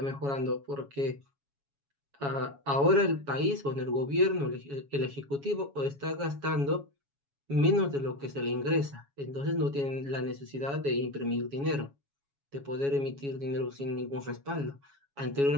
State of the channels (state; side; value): late; left; 7.2 ms